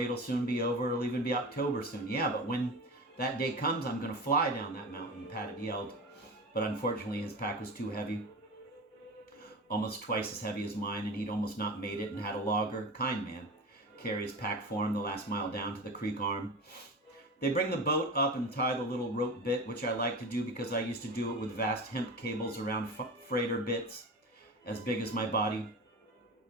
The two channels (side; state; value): both; normal; correlation 0.29